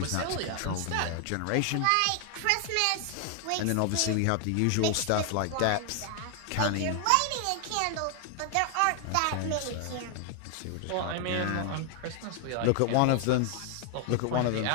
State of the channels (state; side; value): different; both; correlation 0.00